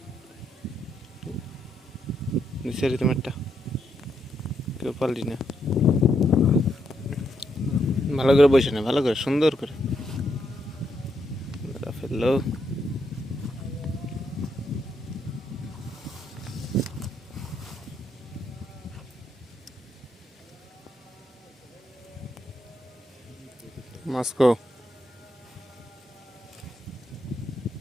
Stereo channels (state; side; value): normal; both; correlation 0.78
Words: নিচের তোমারটা কেউ পারলি না। ভালো করে বসে না, ভালো করে সুন্দর করে ফেললো। মস্কো